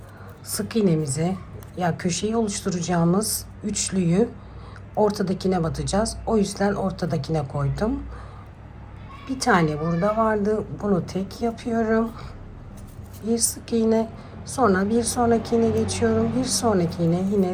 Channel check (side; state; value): both; identical; correlation 1.00